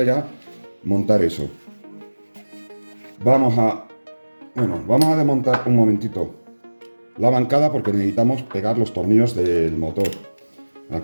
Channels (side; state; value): both; inverted; correlation -1.00